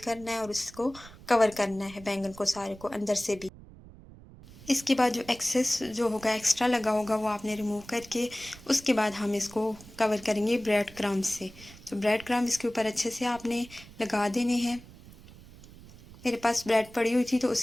है और इसको कवर करना है बैंगन को सारे को अंदर से भी। इसके बाद जो एक्सेस जो होगा एक्स्ट्रा लगा होगा वो आपने रिमूव करके उसके बाद हम इसको कवर करेंगे ब्रेड क्रम्ब से। तो ब्रेड क्रम्ब इसके ऊपर अच्छे से आपने लगा देने हैं। मेरे पास ब्रेड पड़ी हुई थी तो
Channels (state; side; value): noise; right; rumble, 20 dB below the sound